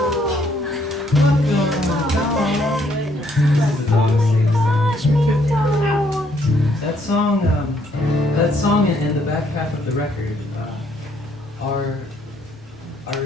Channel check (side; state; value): both; normal; correlation 0.68